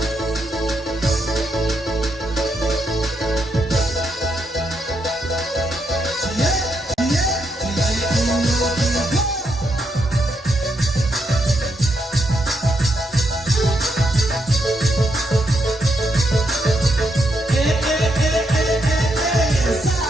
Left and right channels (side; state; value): both; normal; correlation 0.79